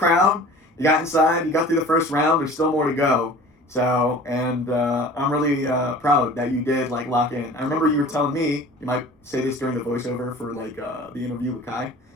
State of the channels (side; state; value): both; normal; correlation 0.43